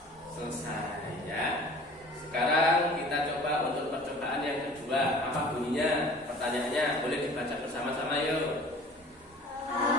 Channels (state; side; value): normal; both; correlation 0.46